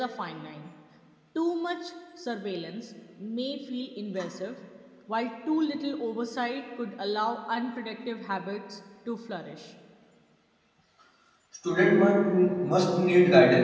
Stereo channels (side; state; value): both; identical; correlation 1.00